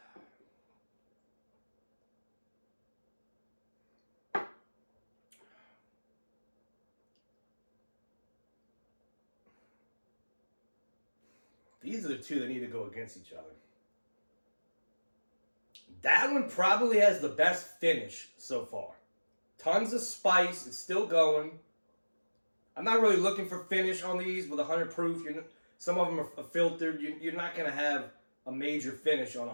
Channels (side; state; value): both; inverted; correlation -1.00